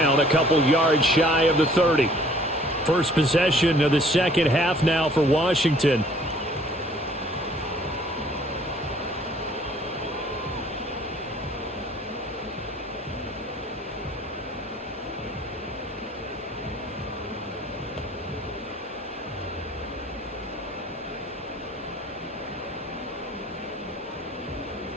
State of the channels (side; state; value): both; normal; correlation 0.56